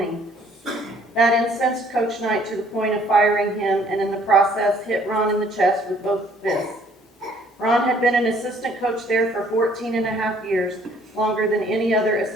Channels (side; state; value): both; normal; correlation 0.60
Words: That incensed Coach Knight to the point of firing him, and in the process hit Ron in the chest with both fists. Ron had been an assistant coach there for 14 and a half years, longer than any other